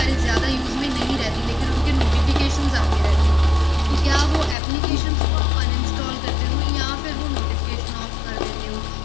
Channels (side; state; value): right; drops out; at 4.5 s